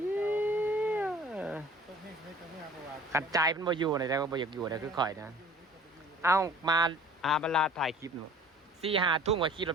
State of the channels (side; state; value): both; normal; correlation 0.48